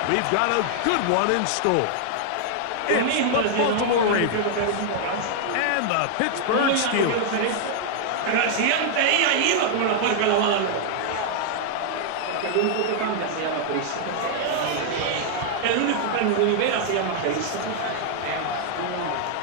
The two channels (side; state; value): both; different; correlation 0.00